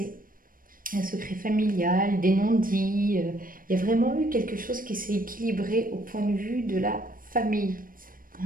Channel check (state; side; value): late; left; 0.41 ms